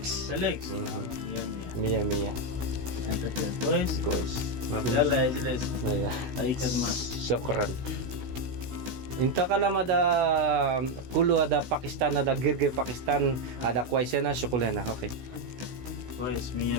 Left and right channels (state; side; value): late; left; 16 ms